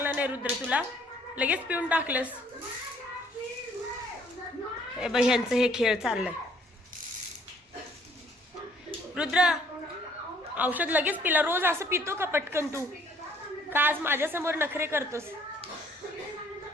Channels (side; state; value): both; normal; correlation 0.61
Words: नाही रुद्र तुला, लगेच पिऊन टाकलंस. हे बाई ह्यांचं हे खेळ चाललंय. रुद्र औषध लगेच पिला. रोज असं पितो का पटकन तू? का आज माझ्यासमोर नखरे करतोस?